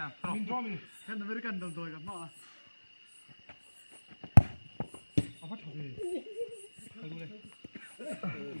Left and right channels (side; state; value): both; inverted; correlation -1.00